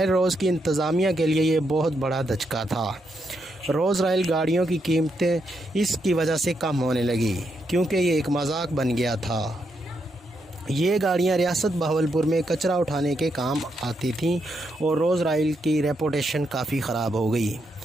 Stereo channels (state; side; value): normal; both; correlation 0.80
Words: روز کی انتظامیہ کے لیے یہ بہت بڑا دھچکا تھا۔ روز رائل گاڑیوں کی قیمتیں اس کی وجہ سے کم ہونے لگی، کیونکہ یہ ایک مذاق بن گیا تھا۔ یہ گاڑیاں ریاست بہاولپور میں کچرا اٹھانے کے کام آتی تھیں اور روز رائل کی ریپوٹیشن کافی خراب ہو گئی۔